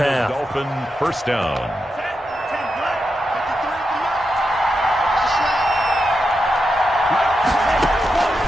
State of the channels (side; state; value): both; normal; correlation 0.87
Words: Dolphin first down.